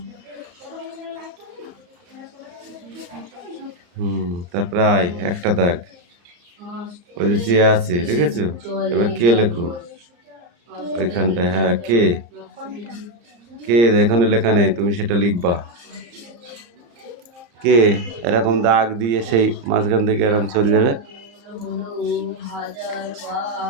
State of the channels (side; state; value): left; late; 34 ms